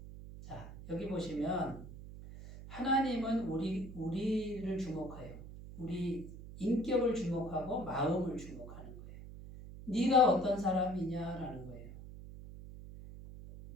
자, 여기 보시면 하나님은 우리를 주목해요. 우리 인격을 주목하고 마음을 주목하는 거예요. 네가 어떤 사람이냐라는 거예요.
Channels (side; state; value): right; noise; hum, 13 dB below the sound